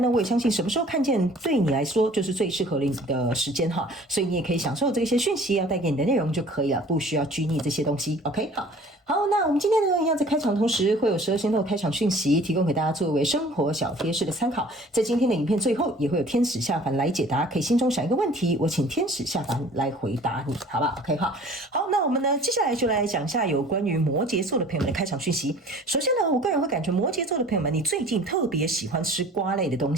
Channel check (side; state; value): both; normal; correlation 0.49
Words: 呢，我也相信什麼時候看見對你來說就是最適合你的時間哈，所以你也可以享受這些訊息要帶給你的內容就可以了，不需要拘泥這些東西。OK， 好，那我們今天呢，一樣在開場同時會有12星座開場訊息提供給大家作為生活小貼士的參考。在今天的影片最後也會有天使下凡來解答，可以心中想一個問題，我請天使下凡來回答你，好吧 ？OK 哈，好，那我們呢接下來就來講一下有關於摩羯座的朋友們的開場訊息。首先呢，我個人會感覺摩羯座的朋友們，你最近特別喜歡吃瓜類的東